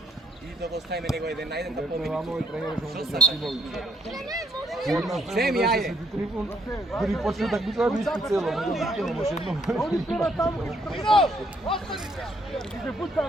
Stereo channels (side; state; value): both; normal; correlation 0.68